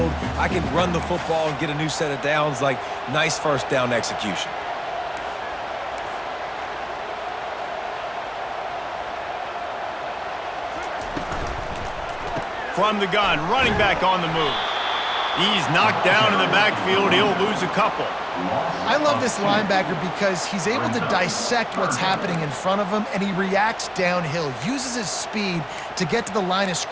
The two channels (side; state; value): both; identical; correlation 1.00